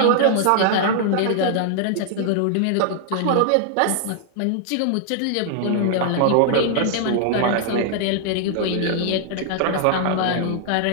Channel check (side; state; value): both; different; correlation -0.01